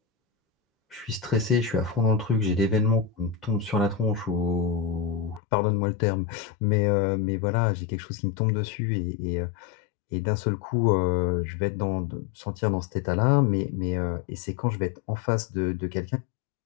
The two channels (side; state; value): right; drops out; at 5.4 s